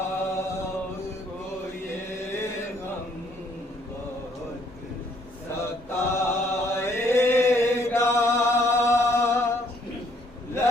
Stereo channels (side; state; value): both; normal; correlation 0.65